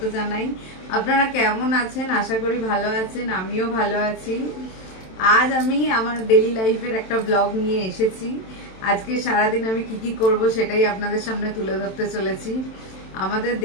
জানাই। আপনারা কেমন আছেন? আশা করি ভালো আছেন, আমিও ভালো আছি। আজ আমি আমার ডেইলি লাইফের একটা ব্লগ নিয়ে এসেছি। আজকে সারাদিন আমি কি করব সেটাই আপনাদের সামনে তুলে ধরতে চলেছি। আমাদের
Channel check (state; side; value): late; right; 27 ms